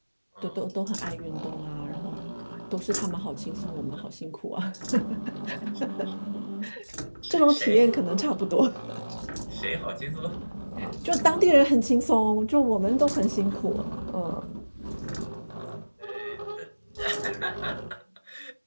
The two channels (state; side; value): inverted; both; correlation -1.00